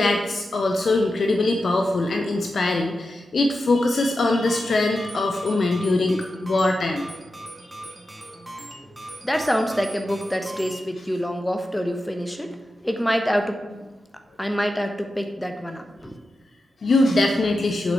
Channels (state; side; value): normal; both; correlation 0.90